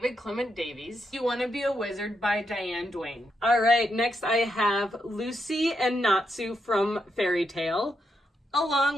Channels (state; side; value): normal; both; correlation 0.81